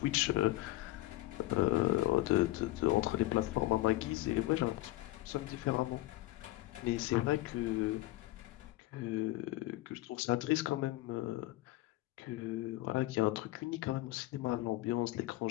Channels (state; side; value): quieter; right; 17.8 dB